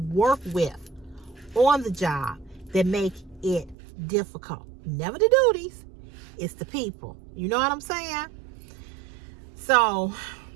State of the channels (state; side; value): drops out; left; at 3.8 s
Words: work with on the job that make it difficult. Never the duties, it's the people. You know what I'm saying? So